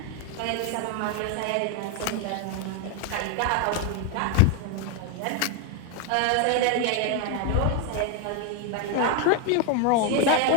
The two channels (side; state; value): both; different; correlation 0.01